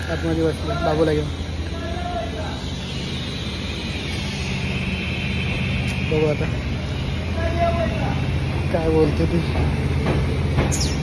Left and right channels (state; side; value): identical; both; correlation 1.00